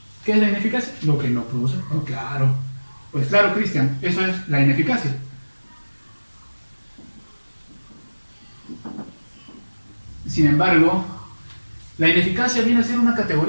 ¿Qué es la ineficacia? Lo que no produce. Oh, claro. Pues claro, Cristian, eso es la ineficacia. Sin embargo, la ineficacia viene a ser una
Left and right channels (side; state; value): both; inverted; correlation -1.00